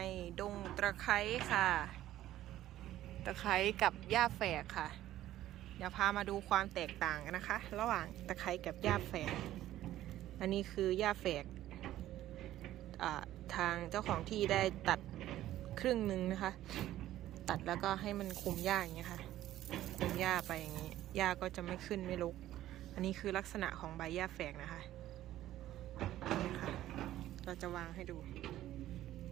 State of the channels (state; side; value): quieter; left; 13.7 dB